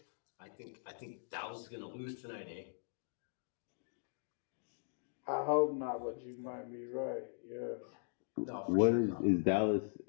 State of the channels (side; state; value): right; silent; digital silence